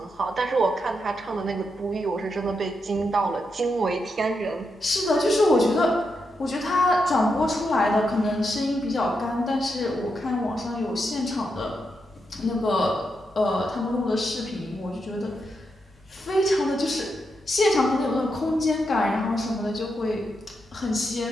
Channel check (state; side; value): normal; both; correlation 0.84